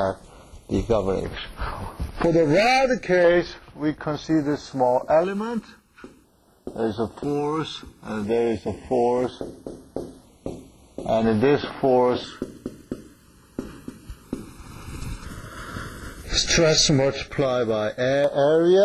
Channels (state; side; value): identical; both; correlation 1.00